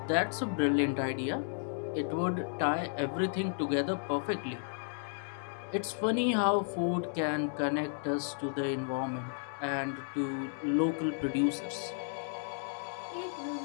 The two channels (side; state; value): right; silent; digital silence